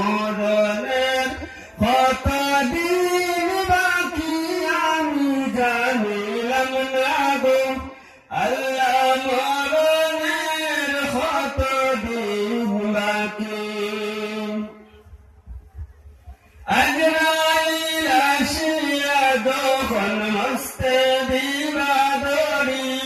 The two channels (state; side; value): identical; both; correlation 1.00